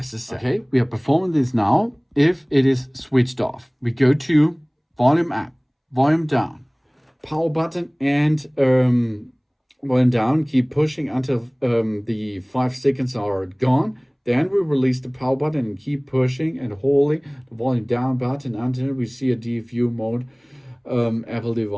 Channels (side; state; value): both; identical; correlation 1.00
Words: Okay, we are performing this now. If it is switched off, we go to volume up, volume down, power button, and volume down. Keep pushing until the 5 seconds are gone. Then we release the power button and keep pushing and holding the volume down button until we see a DFU mode Apple